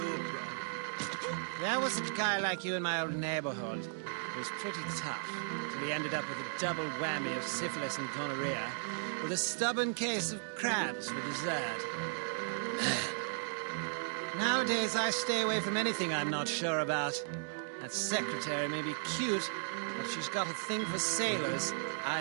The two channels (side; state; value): left; silent; digital silence